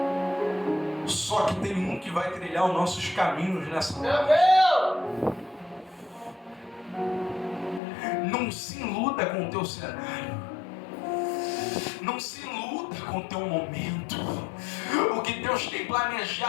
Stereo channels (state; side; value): drops out; right; at 7.8 s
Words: Só que tem um que vai trilhar os nossos caminhos nessa hora. Não se iluda com o teu cenário. Não se iluda com o teu momento. O que Deus tem